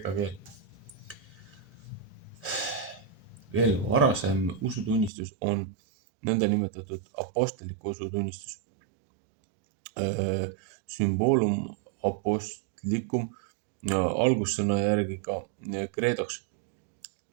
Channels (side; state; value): left; drops out; at 5.1 s